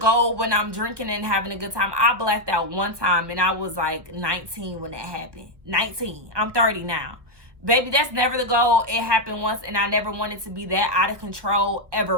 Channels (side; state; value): left; late; 1.4 ms